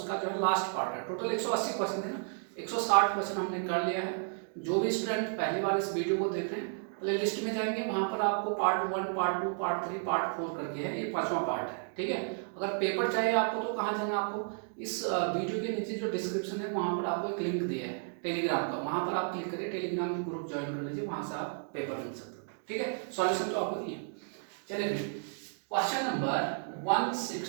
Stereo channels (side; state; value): left; silent; 56 dB below the other